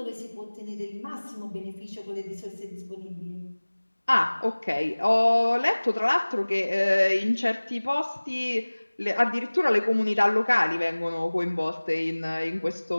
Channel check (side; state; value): both; inverted; correlation -1.00